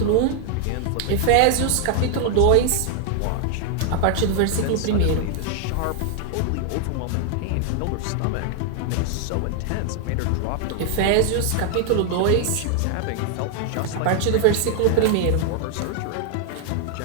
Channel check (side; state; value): both; different; correlation 0.00